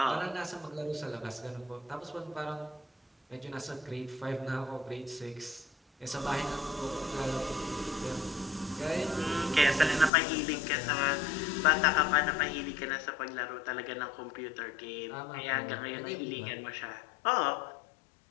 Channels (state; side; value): drops out; right; at 10.1 s